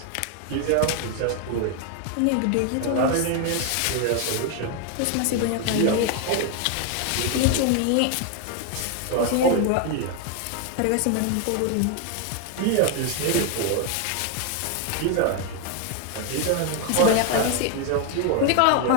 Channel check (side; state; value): both; different; correlation 0.01